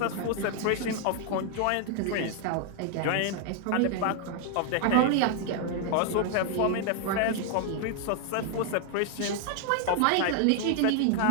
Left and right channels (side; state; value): both; different; correlation 0.00